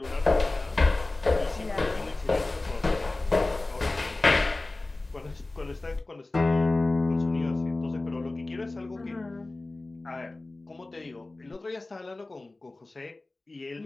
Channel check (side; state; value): right; quieter; 3.0 dB